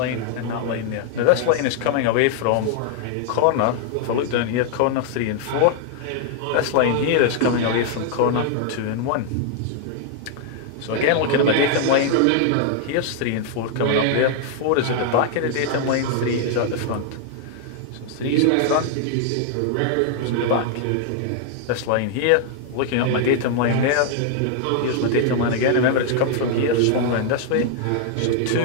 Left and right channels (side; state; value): both; different; correlation 0.00